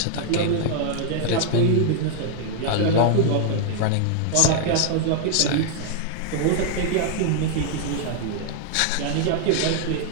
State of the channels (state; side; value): different; both; correlation 0.00